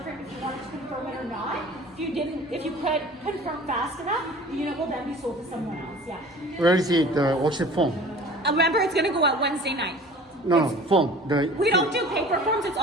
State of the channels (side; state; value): both; normal; correlation 0.44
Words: frame if you wanted to confirm it or not. If you could confirm fast enough, the unit will then be sold to someone else, yeah. Where is it, the worksheet form? Remember, it's gonna go out Wednesday night. No, form. We don't do paper forms, it's